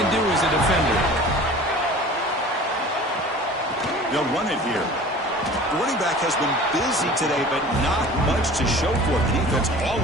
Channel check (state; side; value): normal; both; correlation 0.42